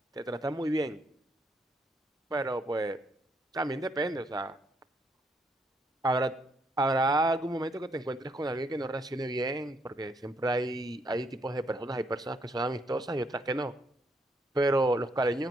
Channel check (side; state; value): both; normal; correlation 0.73